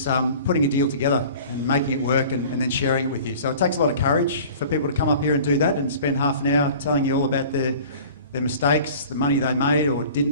putting a deal together and making it work and then sharing it with you. So it takes a lot of courage for people to come up here and do that and spend half an hour telling you all about their mistakes, the money they made or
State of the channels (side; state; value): both; inverted; correlation -0.43